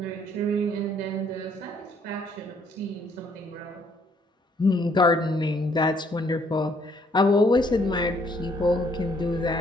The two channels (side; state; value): both; normal; correlation 0.66